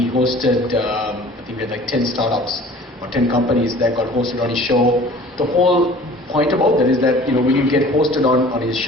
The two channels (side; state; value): both; normal; correlation 0.47